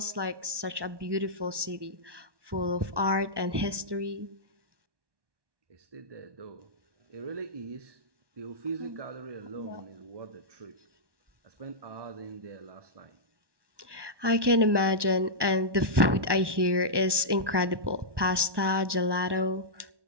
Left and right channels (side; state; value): left; late; 1.1 ms